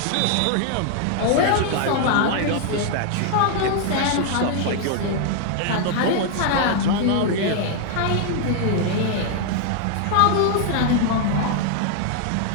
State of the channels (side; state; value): both; different; correlation 0.00